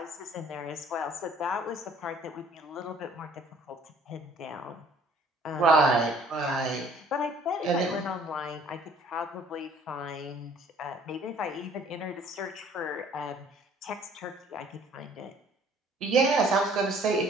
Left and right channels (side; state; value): both; normal; correlation 0.56